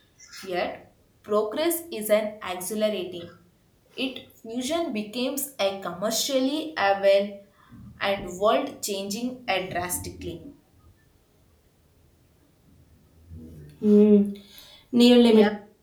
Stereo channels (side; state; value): both; identical; correlation 1.00